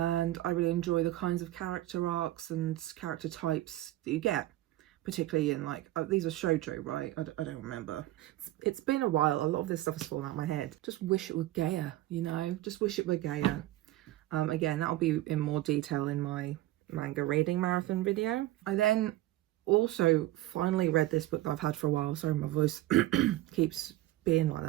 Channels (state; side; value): quieter; left; 16.1 dB